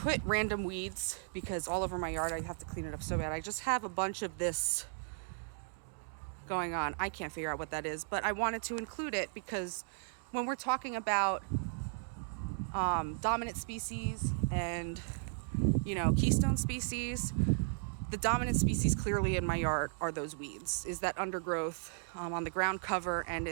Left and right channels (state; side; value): silent; left; digital silence